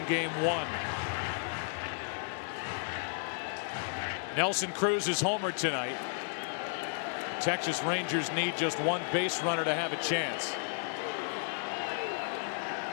Game 1. Nelson Cruz is homered tonight. Texas Rangers need just 1 base runner to have a chance.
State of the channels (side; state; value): right; silent; digital silence